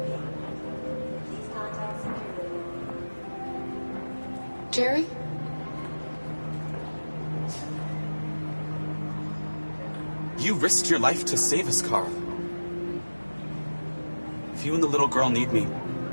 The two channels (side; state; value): both; inverted; correlation -1.00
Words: Jerry? You risked your life to save us, Kara. If you and the little girl need me,